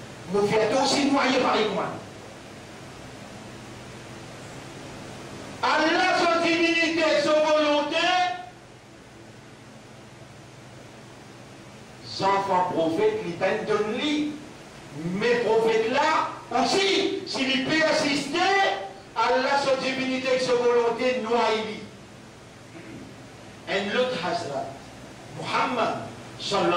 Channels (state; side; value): identical; both; correlation 1.00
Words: vous faites aussi noyer par les moines. Allah, son divinité, son volonté, enfants prophètes, ils peuvent donner. Mais prophètes là, aussi, s'il peut assister, Allah, son divinité, son volonté, noyer. Un autre Hazrat, Muhammad,